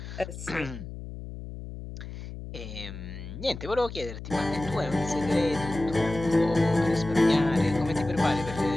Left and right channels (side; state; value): left; noise; hum, 10 dB below the sound